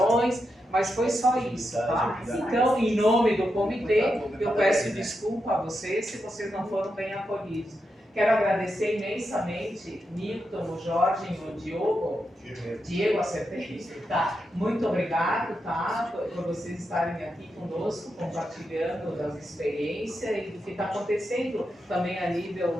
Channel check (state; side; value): normal; both; correlation 0.86